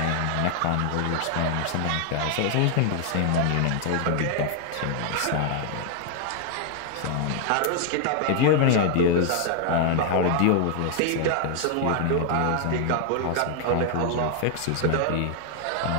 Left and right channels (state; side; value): different; both; correlation 0.00